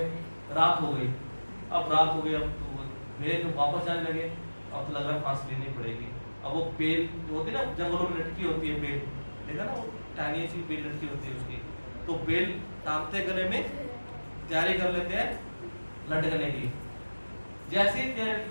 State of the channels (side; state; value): both; inverted; correlation -1.00